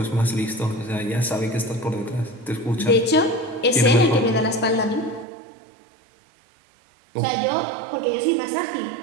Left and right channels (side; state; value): left; drops out; at 5.2 s